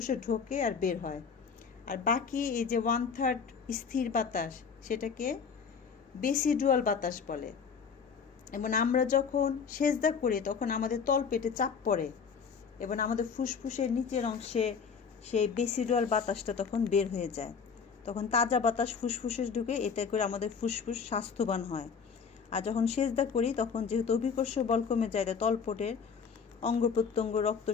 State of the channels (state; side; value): quieter; right; 6.1 dB